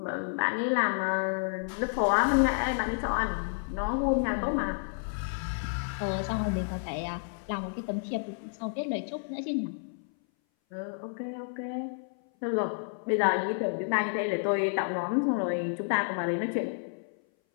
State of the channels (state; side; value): silent; right; 58 dB below the other